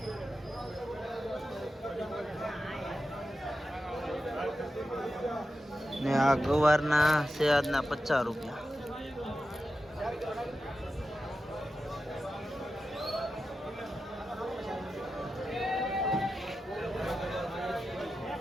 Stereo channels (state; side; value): normal; both; correlation 0.91